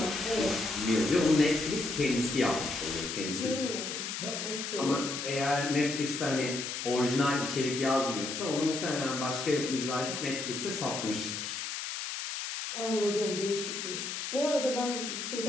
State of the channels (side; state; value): left; noise; hiss, 5 dB below the sound